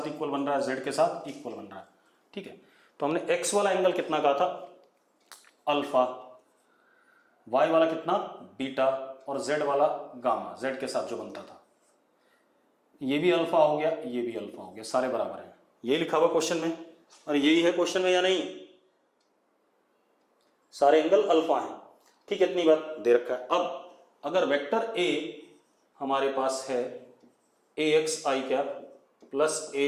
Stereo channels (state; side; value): identical; both; correlation 1.00